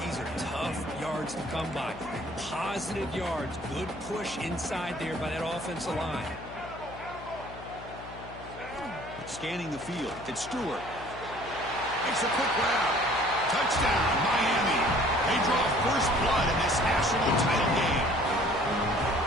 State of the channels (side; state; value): left; noise; hum, 15 dB below the sound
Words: these are tough yards to come by. Positive yards. Good push inside there by that offensive line. Scanning the field. It's Stewart. Makes a quick grab. Touchdown, Miami. They draw first blood in this national title game.